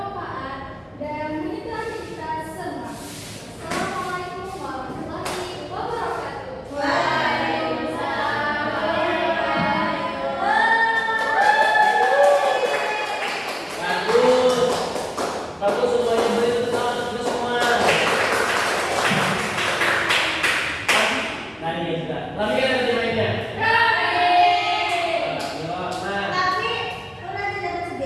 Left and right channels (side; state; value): both; identical; correlation 1.00